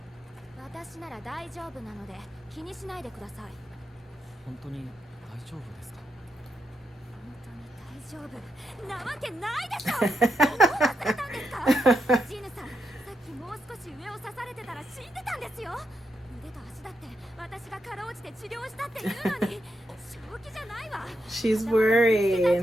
ら。私なら大丈夫なので気にしないでください。本当に大丈夫ですか？大丈夫なわけないでしょ。どこを忘れたんですか？ジヌさん、さっきもう少し上を刺されてたら死んでたんですよ。腕と足だって私がかろうじて治療したっていうのに正気じゃないわ。 She's worried.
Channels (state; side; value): normal; both; correlation 0.83